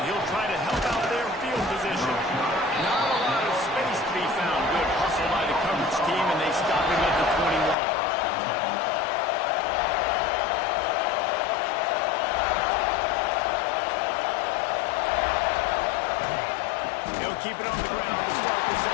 he'll try to help out their field position. Not a lot of space to be found. Good hustle by the coverage team, and they stop him at the 21. Keep it on the ground to start the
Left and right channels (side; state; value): right; drops out; at 7.8 s